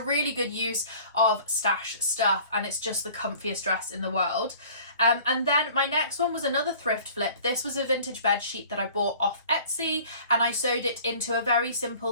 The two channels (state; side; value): inverted; both; correlation -0.48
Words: good use of stash stuff, and it's just the comfiest dress in the world. And then my next one was another thrift flip. This was a vintage bed sheet that I bought off Etsy, and I sewed it into a very